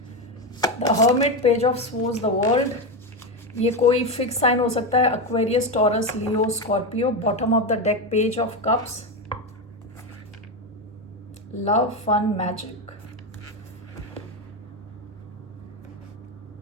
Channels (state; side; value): normal; both; correlation 0.13